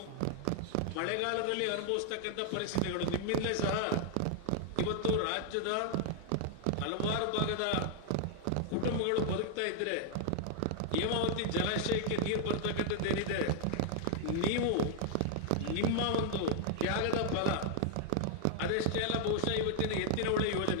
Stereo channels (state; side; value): different; both; correlation -0.01